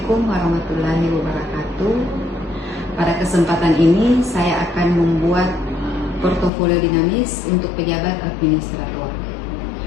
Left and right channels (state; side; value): drops out; right; at 6.5 s